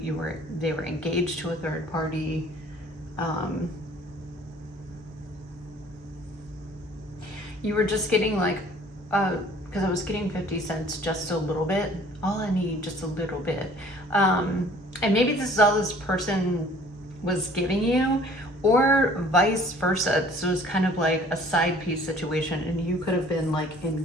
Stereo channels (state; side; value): normal; both; correlation 0.53